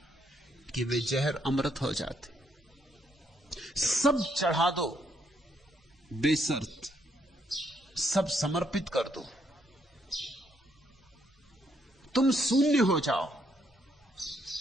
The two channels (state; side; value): normal; both; correlation 0.73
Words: कि वे जहर अमृत हो जाते। सब चढ़ा दो बेशर्त, सब समर्पित कर दो, तुम शून्य हो जाओ।